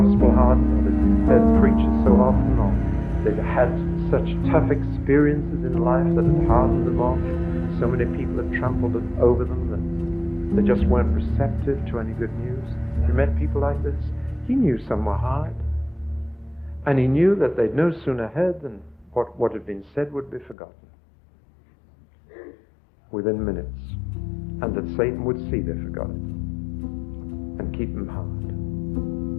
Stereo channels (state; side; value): drops out; right; at 20.6 s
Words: hardened, or they'd heard preachers so often, or they'd had such tough experiences in life that had hardened them off. So many people had trampled over them that they just weren't receptive to any good news. You met people like this? He knew some were hard. And he knew that they'd no sooner heard than what had been said would be forgotten within minutes. And that Satan would see they forgot it and keep them hard.